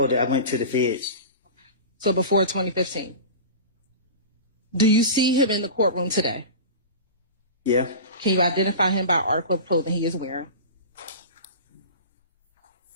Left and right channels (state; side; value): inverted; both; correlation -0.31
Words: that, I went to the feds. So before 2015. Do you see him in the courtroom today? Yeah. Can you identify him by article of clothing he is wearing?